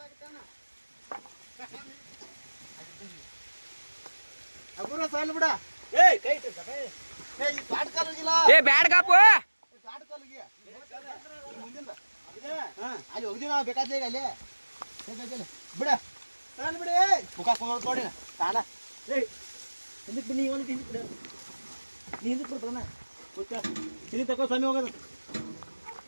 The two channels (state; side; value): inverted; both; correlation -1.00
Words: ಏ ಬ್ಯಾಡ್ ಕಾಪು ಅಲ್ಲಿ ಹೋಗಿದ್ದೀವಿ ನಾವು ಬೇಕಾದ್ರೆ ಅಲ್ಲಿ ಬಿಡ ಬಿಡಿ ಮುಖ ನೋಡಿ ತಾಣ ಹಿಂದಕ್ಕೆ ಬನ್ನಿ ಒಂದು ಹಿಂದಕ್ಕೆ ಬಿಡ ನೀ ಹಿಂದಕ್ಕೆ ಬಿಡ್ತಾನ ಇಲ್ಲಿ ತಗೋ ಸ್ವಾಮಿ ಹೋಗೋದು